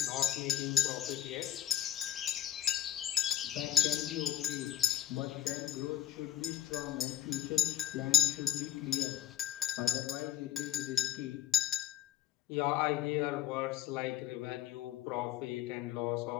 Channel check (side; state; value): right; quieter; 12.1 dB